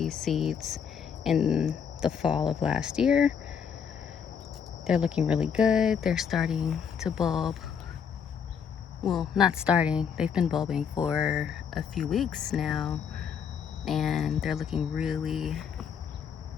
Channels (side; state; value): right; quieter; 7.2 dB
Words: seeds in the fall of last year. They're looking really good. They're starting to bulb. Well, not starting, they've been bulbing for a few weeks now, and they're looking really,